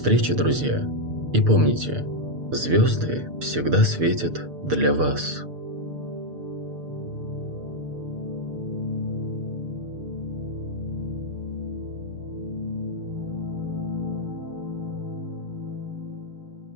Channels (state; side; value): late; left; 6.7 ms